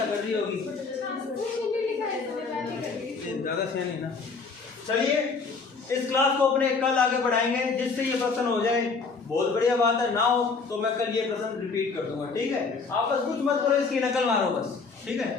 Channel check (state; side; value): quieter; right; 4.7 dB